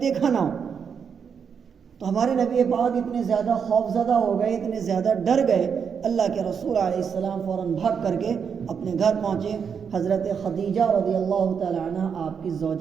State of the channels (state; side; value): quieter; left; 6.8 dB